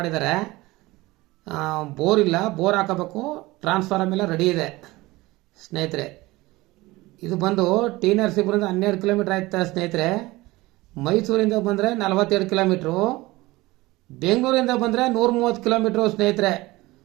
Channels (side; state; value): left; quieter; 20.3 dB